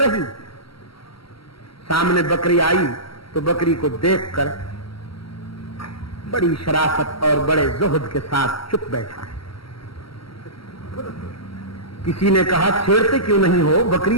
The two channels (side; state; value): right; late; 0.75 ms